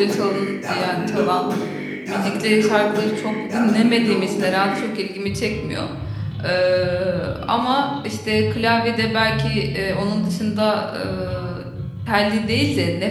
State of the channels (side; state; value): both; identical; correlation 1.00